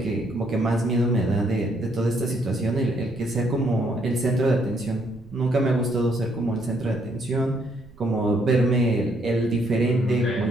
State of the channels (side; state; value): right; noise; rumble, 23 dB below the sound